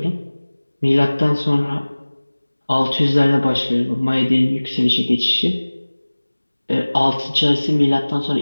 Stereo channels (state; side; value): inverted; both; correlation -1.00